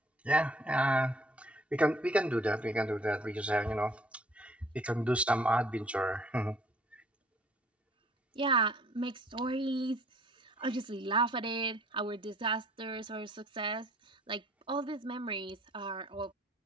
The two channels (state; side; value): normal; both; correlation 0.58